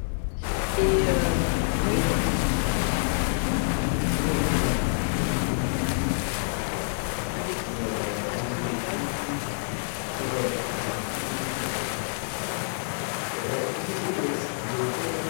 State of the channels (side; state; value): right; silent; digital silence